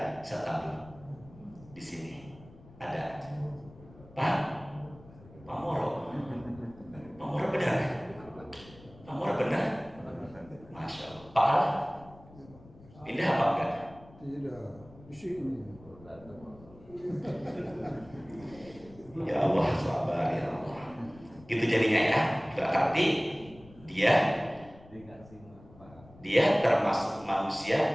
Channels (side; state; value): left; noise; rumble, 22 dB below the sound